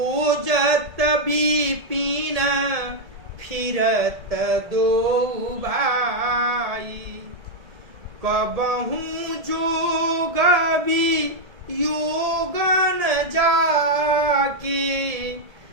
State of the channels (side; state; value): left; late; 1.7 ms